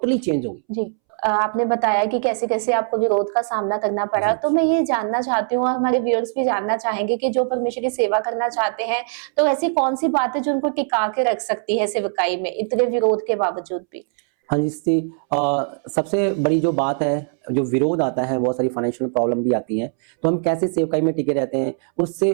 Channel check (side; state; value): left; silent; 65 dB below the other